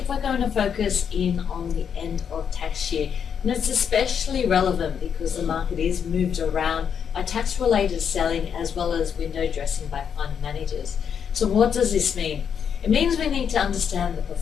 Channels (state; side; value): quieter; right; 7.6 dB